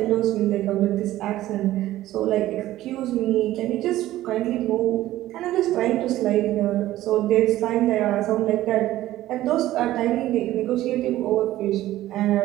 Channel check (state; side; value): quieter; left; 14.9 dB